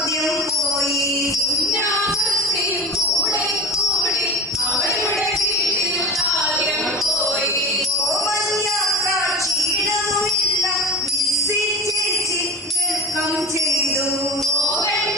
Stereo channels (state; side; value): normal; both; correlation 0.33